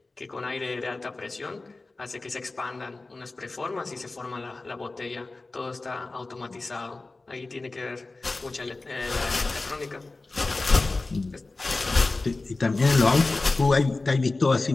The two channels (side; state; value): right; quieter; 3.4 dB